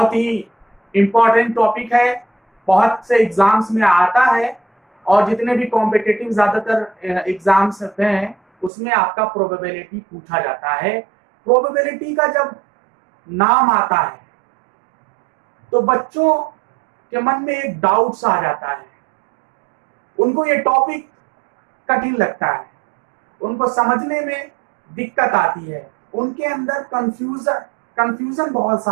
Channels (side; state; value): left; drops out; at 8.7 s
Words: ही इंपॉर्टेंट टॉपिक है, बहुत से एग्जाम्स में आता है और जितने भी कॉम्पिटिटिव ज्यादातर एग्जाम्स हैं उसमें आपका प्रोबेबिलिटी पूछा जाता है। प्रोबेबिलिटी का जब नाम आता है तो बच्चों के मन में एक डाउट्स आ जाता है, उनको ये टॉपिक कठिन लगता है, उनको समझने में दिक्कत आती है, उनके अंदर कंफ्यूजन बहुत